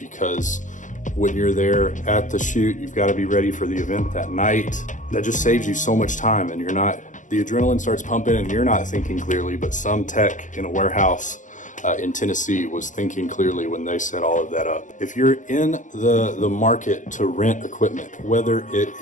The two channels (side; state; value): right; late; 0.37 ms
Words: when you're there at the shoot, you've got to be ready for the event that night. That just saves you so much time, and the adrenaline starts pumping and you're not thinking clearly, but some tech in a warehouse in Tennessee was thinking clearly when they set all of that up. If you're in the market to rent equipment, whether it